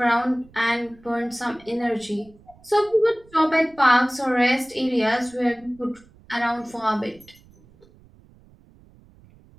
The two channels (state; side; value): noise; right; rumble, 27 dB below the sound